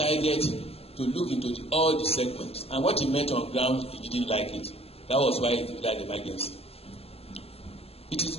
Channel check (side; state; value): right; late; 0.29 ms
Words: to look into all the segments, and what he met on ground, he didn't like it. That was why he declared emergency. It is